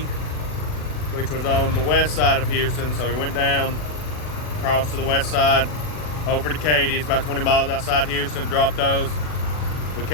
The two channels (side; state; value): right; late; 40 ms